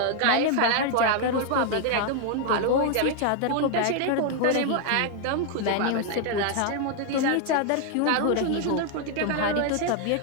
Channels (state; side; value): different; both; correlation 0.00